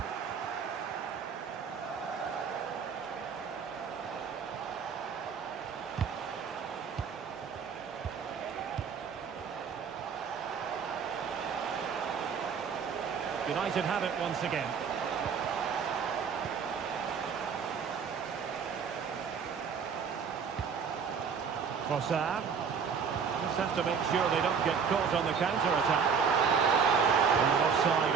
United have it once again. Trossard. Just have to make sure they don't get caught on the counter-attack. Offside,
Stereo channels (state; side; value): quieter; left; 6.4 dB